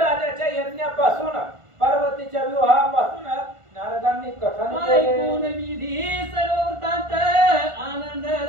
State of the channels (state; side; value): late; left; 1.5 ms